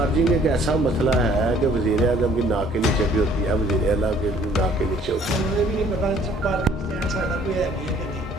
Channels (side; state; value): both; normal; correlation 0.57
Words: एक ऐसा मसला है कि वज़ीर आज़म की नाक के नीचे भी होती है, वज़ीर आला के नाक के नीचे होती है। मुझे भी नहीं पता पार्किंग स्टैंड साढ़ा कोई है भी है कि नहीं।